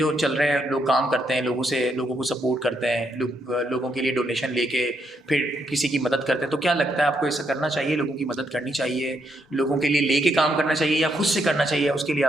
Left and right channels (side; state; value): both; normal; correlation 0.77